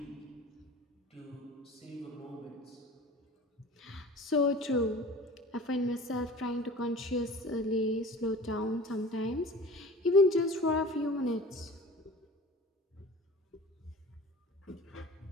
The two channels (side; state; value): both; normal; correlation 0.41